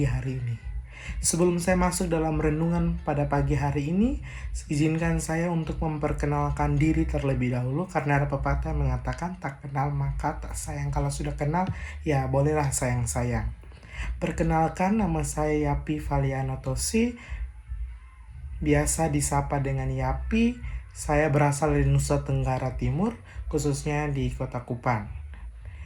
hari ini. Sebelum saya masuk dalam renungan pada pagi hari ini, izinkan saya untuk memperkenalkan diri terlebih dahulu karena ada pepatah yang mengatakan tak kenal maka tak sayang. Kalau sudah kenal, ya bolehlah sayang-sayang. Perkenalkan, nama saya Yapi Valiano Tosi, biasa disapa dengan Yapi. Saya berasal dari Nusa Tenggara Timur, khususnya di Kota Kupang.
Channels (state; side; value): identical; both; correlation 1.00